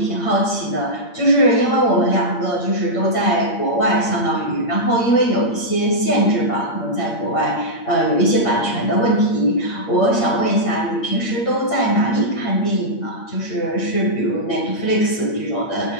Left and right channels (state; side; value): late; right; 8.6 ms